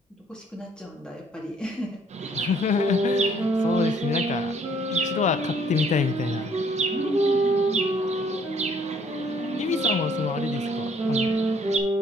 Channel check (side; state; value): both; normal; correlation 0.63